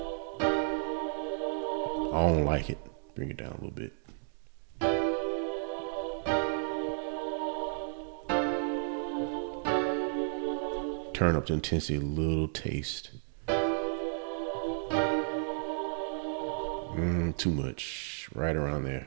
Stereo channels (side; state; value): left; silent; digital silence